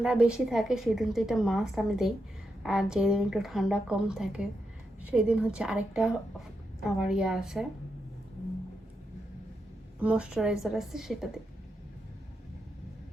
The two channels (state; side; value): normal; both; correlation 0.85